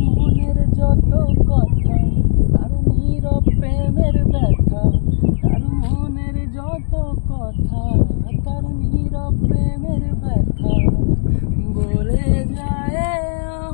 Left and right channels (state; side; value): silent; right; digital silence